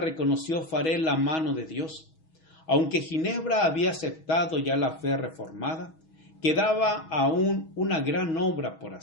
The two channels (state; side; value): late; right; 6.2 ms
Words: Farel la mano de Dios. Aunque Ginebra había aceptado ya la fe reformada, quedaba aún una gran obra por